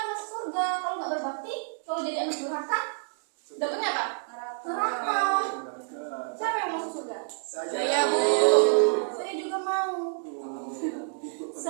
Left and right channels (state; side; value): silent; left; digital silence